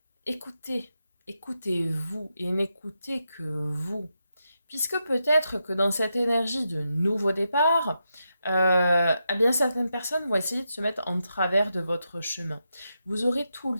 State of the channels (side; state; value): both; inverted; correlation -0.86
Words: Écoutez, écoutez-vous et n'écoutez que vous. Puisque peut-être que dans cette énergie de nouveau départ, eh bien certaines personnes vont essayer de se mettre en travers de votre chemin. Vous aurez tout le